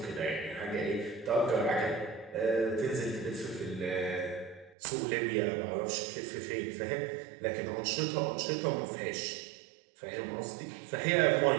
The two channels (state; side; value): drops out; left; at 4.8 s